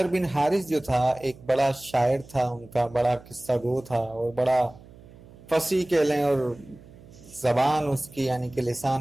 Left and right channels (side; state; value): right; noise; hum, 22 dB below the sound